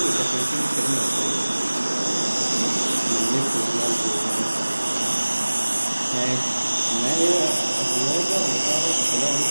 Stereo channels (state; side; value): inverted; both; correlation -1.00